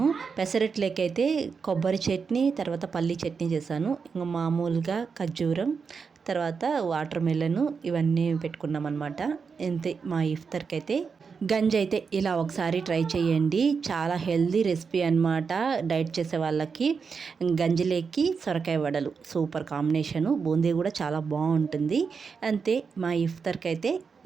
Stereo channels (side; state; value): left; quieter; 5.5 dB